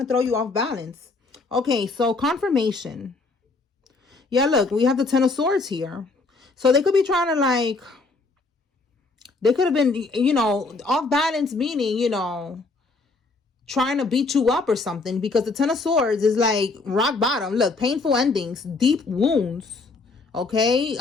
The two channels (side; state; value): right; quieter; 3.7 dB